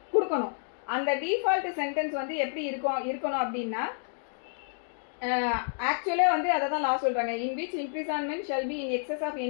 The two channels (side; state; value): right; silent; digital silence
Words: கொடுக்கணும். அந்த டிஃபால்ட் சென்டென்ஸ் வந்து எப்படி இருக்கணும் அப்படின்னா, ஆக்சுவலாக வந்து அதை தான் லா சொல்கிறாங்க, in which imprisonment shall be in excess of